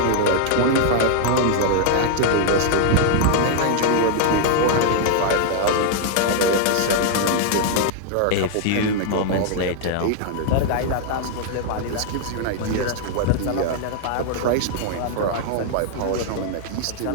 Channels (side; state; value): both; different; correlation -0.01